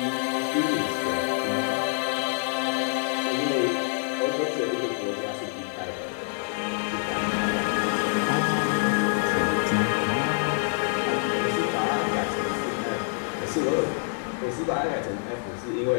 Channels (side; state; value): right; silent; digital silence